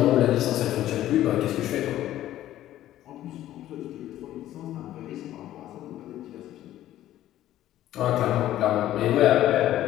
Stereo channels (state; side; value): quieter; right; 13.3 dB